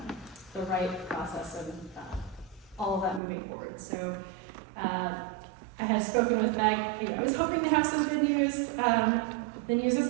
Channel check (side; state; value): left; drops out; at 3.2 s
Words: the right process and all of that moving forward. So I had spoken with Meg. I was hoping to have some good news. The news